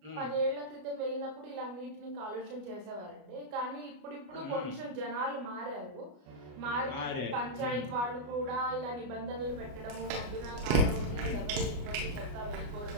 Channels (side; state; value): left; late; 33 ms